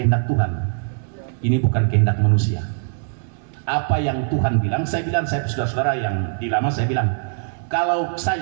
Tuhan. Ini bukan kehendak manusia. Apa yang Tuhan bilang, saya bilang, saya saudara-saudara yang di lama, saya bilang, kalau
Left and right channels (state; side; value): silent; left; 64 dB below the other